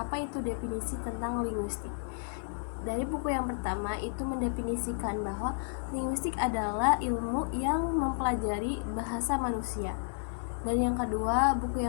itu definisi tentang linguistik. Dari buku yang pertama itu mendefinisikan bahwa linguistik adalah ilmu yang mempelajari bahasa manusia. Dan yang kedua, buku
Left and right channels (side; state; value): right; silent; digital silence